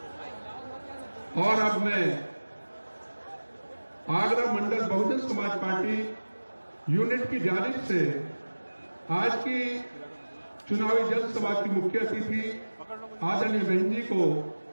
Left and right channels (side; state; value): both; inverted; correlation -1.00